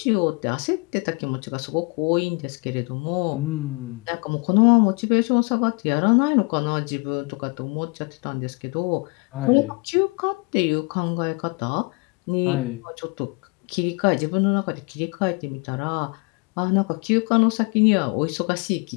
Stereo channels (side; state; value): right; quieter; 29.9 dB